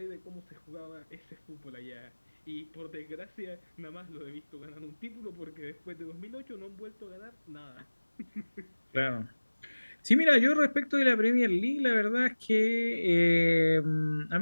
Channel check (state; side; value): inverted; both; correlation -1.00